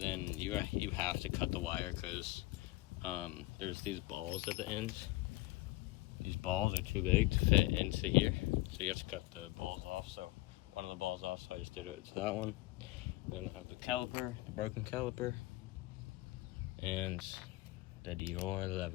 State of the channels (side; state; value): right; quieter; 19.5 dB